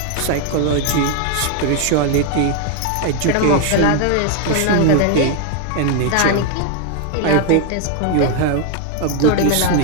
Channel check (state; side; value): different; both; correlation 0.00